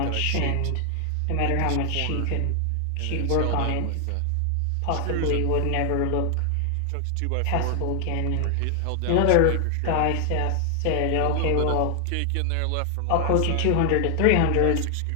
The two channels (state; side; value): different; both; correlation 0.00